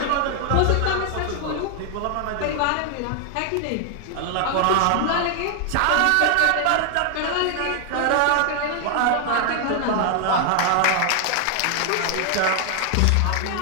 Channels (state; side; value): different; both; correlation 0.00